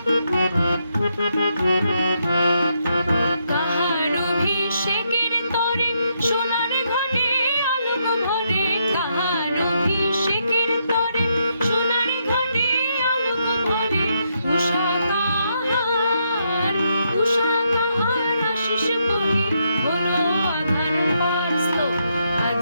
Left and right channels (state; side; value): inverted; both; correlation -0.78